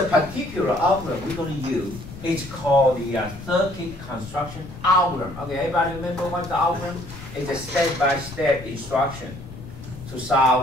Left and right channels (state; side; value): noise; left; rumble, 14 dB below the sound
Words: particular algorithm we're going to use. It's called the circuit construction algorithm. Okay, everybody remember what the algorithm is? A step-by-step instruction to